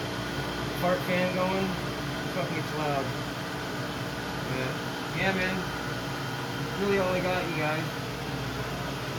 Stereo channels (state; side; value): identical; both; correlation 1.00